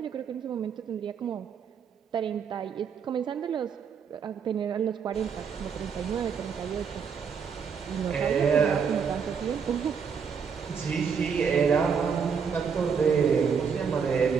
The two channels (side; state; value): left; quieter; 6.5 dB